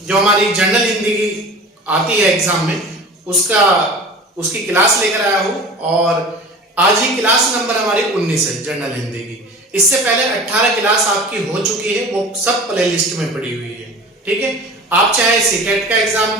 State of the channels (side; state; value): both; normal; correlation 0.38